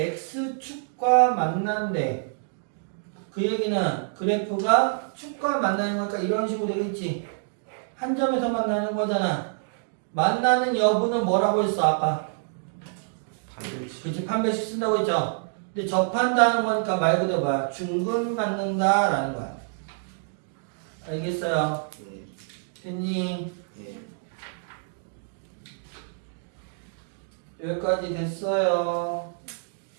만난대. 그 얘기는 그래프가 축과 만나는 거니까 이런 식으로 되겠지. 한 점에서 만나는 거잖아. 만나는 여부는 뭐라고 했어 아까? 그치, 판별식 쓴다고 했죠. 근데 접한다는 거니까 말 그대로 뭐야? 중근 갖는다라는 거야. 알겠어요? 예. 됐니? 예. 여기까지 됐어요.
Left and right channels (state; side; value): silent; left; digital silence